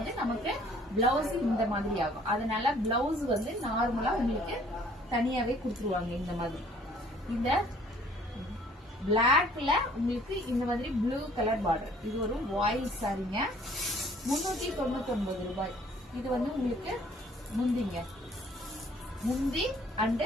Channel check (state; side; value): normal; both; correlation 0.57